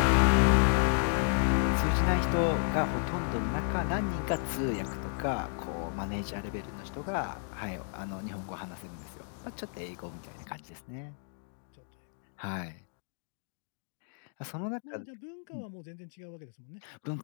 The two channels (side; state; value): right; silent; digital silence